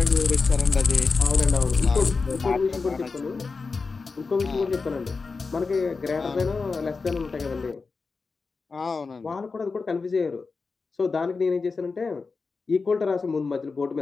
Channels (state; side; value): quieter; right; 4.4 dB